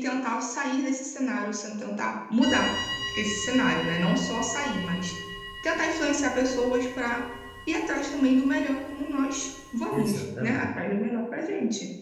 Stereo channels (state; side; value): identical; both; correlation 1.00